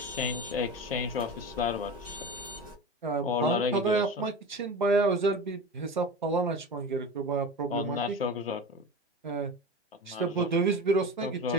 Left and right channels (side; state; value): both; normal; correlation 0.29